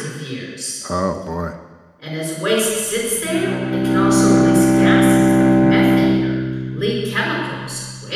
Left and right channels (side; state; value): both; identical; correlation 1.00